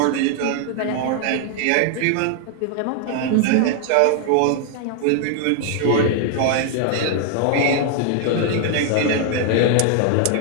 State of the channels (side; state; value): both; different; correlation 0.00